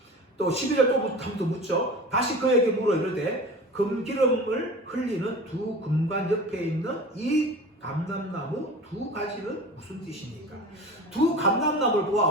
또 12절 또 묻죠. 다시 그에게 물어 이르되 금기름을 흘리는 두 금관 옆에 있는 이 감람나무 두 가지는 무슨 뜻입니까? 두 감람나무를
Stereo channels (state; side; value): normal; both; correlation 0.36